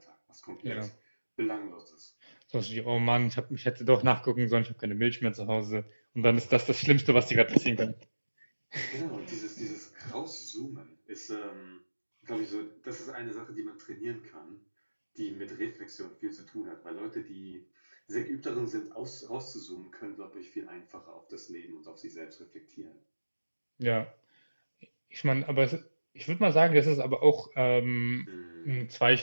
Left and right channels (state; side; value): inverted; both; correlation -1.00